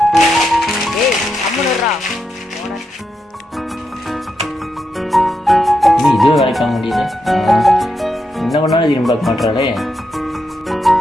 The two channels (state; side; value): normal; both; correlation 0.84